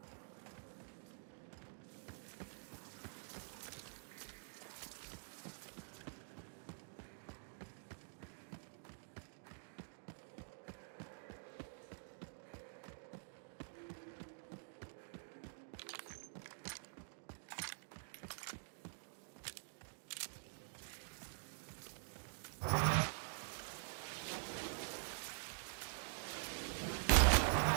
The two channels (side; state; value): left; silent; digital silence